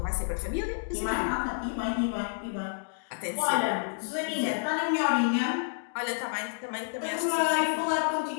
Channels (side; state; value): right; silent; digital silence